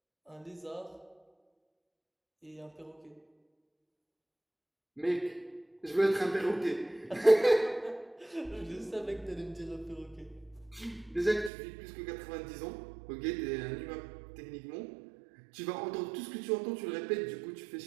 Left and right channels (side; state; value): left; drops out; at 11.5 s